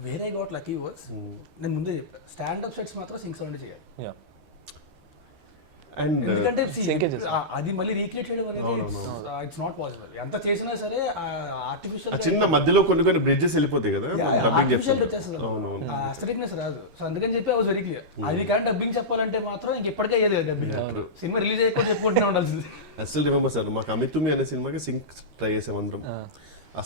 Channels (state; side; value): late; left; 13 ms